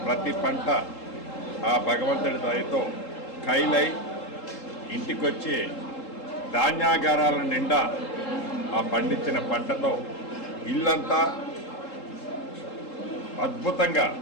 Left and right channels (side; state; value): right; late; 3.8 ms